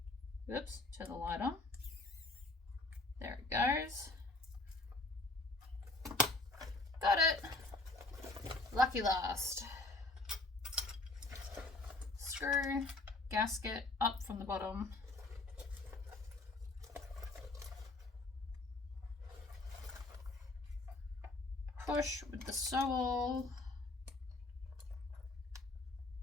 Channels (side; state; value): right; quieter; 3.1 dB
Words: Oops, turn the light on. There it goes. Got it. Lucky last. Screw, gasket up from the bottom. Push with the sewall.